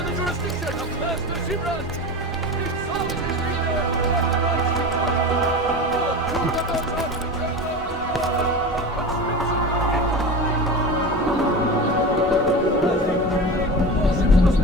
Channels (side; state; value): both; normal; correlation 0.28